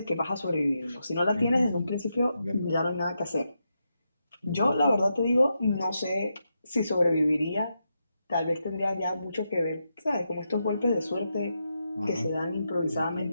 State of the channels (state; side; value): inverted; both; correlation -0.85